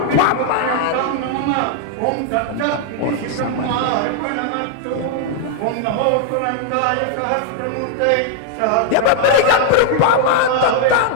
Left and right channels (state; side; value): different; both; correlation 0.00